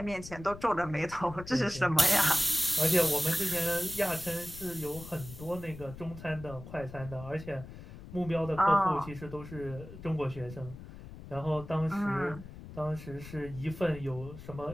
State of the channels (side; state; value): left; noise; rumble, 14 dB below the sound